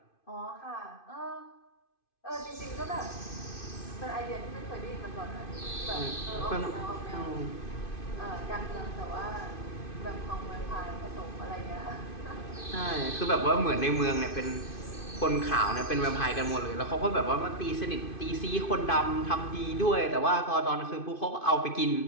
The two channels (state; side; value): late; right; 2.5 ms